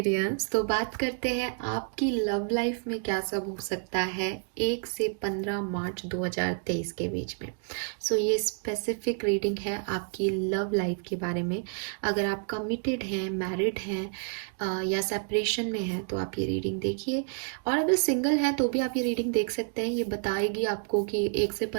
तो बात करते हैं आपकी लव लाइफ में क्या सब हो सकता है 1 से 15 मार्च 2023 के बीच में। ये स्पेसिफिक रीडिंग है आपकी लव लाइफ के बारे में। अगर आप कमिटेड हैं, मैरिड हैं या सेपरेशन में हैं तो आप ये रीडिंग देखिए। और अगर सिंगल हैं तो भी आप ये रीडिंग देख सकते हैं। ये बताएगी आपको कि 1 से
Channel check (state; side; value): silent; left; 58 dB below the other